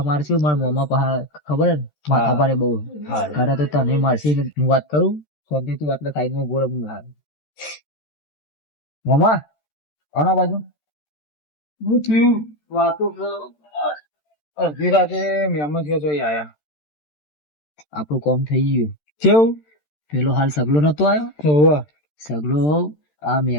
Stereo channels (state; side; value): late; right; 13 ms